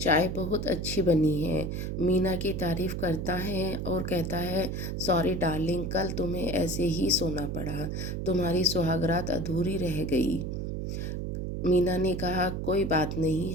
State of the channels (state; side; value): noise; right; hum, 3 dB below the sound